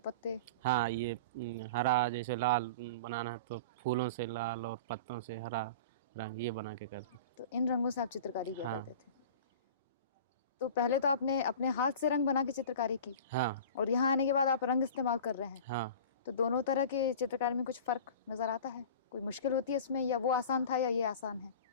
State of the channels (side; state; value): both; inverted; correlation -0.37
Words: हाँ, ये हरा, जैसे लाल बनाना है तो फूलों से लाल और पत्तों से हरा रंग, ये बना के करते। तो इन रंगों से आप चित्रकारी किया हाँ करते थे? तो पहले तो आपने अपने हाथ से रंग बना के चित्रकारी की, हाँ और यहाँ आने के बाद आप रंग इस्तेमाल कर रहे हैं, हाँ। तो दोनों तरह की चित्रकारी में कुछ फर्क नजर आता है? कोई मुश्किल होती है इसमें, या वो आसान था या ये आसान है?